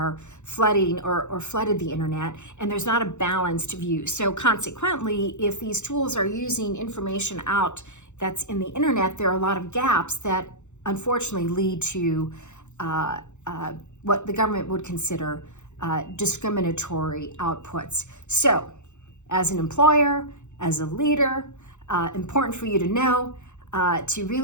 flooding or flooded the internet, and there's not a balanced view. So consequently, if these tools are using information out that's in the internet, there are a lot of gaps that unfortunately lead to what the government would consider discriminatory outputs. So as an employer, as a leader, important for you to know to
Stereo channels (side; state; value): right; late; 0.83 ms